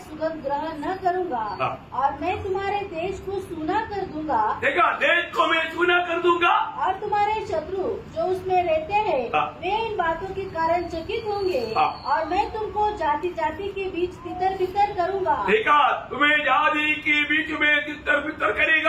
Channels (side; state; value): both; identical; correlation 1.00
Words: सुगंध ग्रहण न करूंगा और मैं तुम्हारे देश को सूना कर दूंगा। देखा, देश को मैं सूना कर दूंगा और तुम्हारे शत्रु जो उसमें रहते हैं वे इन बातों के कारण चकित होंगे और मैं तुमको जाति जाति के बीच तितर बितर करूंगा। देखा, तुम्हें जाति के बीच में तितर बितर